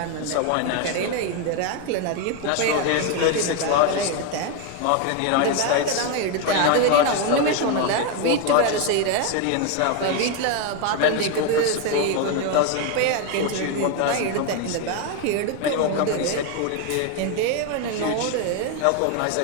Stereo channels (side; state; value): both; different; correlation 0.02